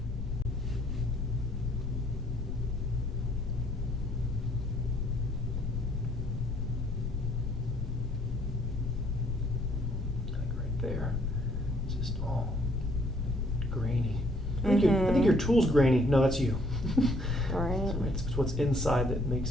There. It's just all grainy. I think your tool's grainy. No, that's you. Right. So it's what's inside that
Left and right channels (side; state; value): both; normal; correlation 0.65